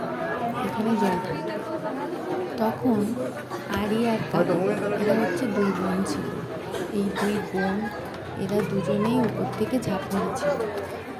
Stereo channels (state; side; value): identical; both; correlation 1.00